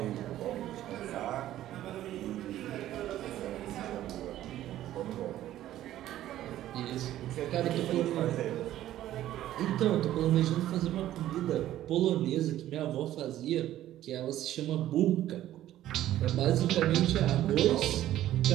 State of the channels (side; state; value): left; quieter; 13.2 dB